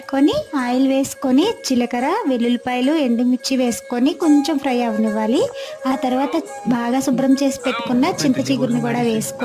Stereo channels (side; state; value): both; identical; correlation 1.00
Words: ఆయిల్ వేసుకొని జీలకర్ర, వెల్లుల్లిపాయలు, ఎండుమిర్చి వేసుకొని కొంచెం ఫ్రై అవనివ్వాలి. ఆ తర్వాత బాగా శుభ్రం చేసి పెట్టుకున్న చింత చిగురుని కూడా